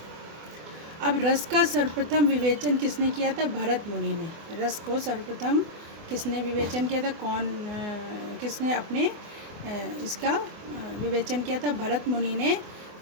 अब रस का सर्वप्रथम विवेचन किसने किया था? भरत मुनि ने। रस को सर्वप्रथम किसने विवेचन किया था? किसने अपने इसका विवेचन किया था? भरत मुनि ने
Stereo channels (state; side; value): late; left; 24 ms